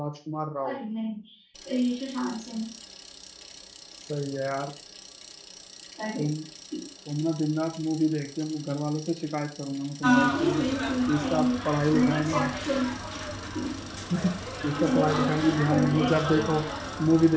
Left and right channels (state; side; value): identical; both; correlation 1.00